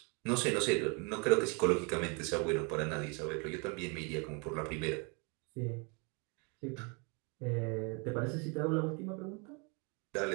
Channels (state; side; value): quieter; left; 33.4 dB